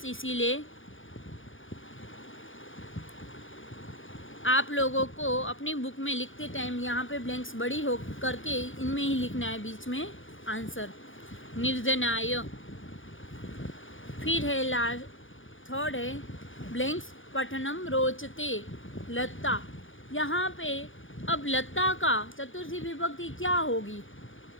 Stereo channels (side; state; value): right; late; 0.57 ms